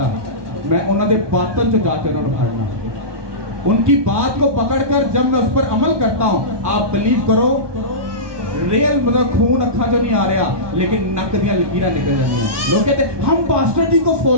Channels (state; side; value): late; left; 1.2 ms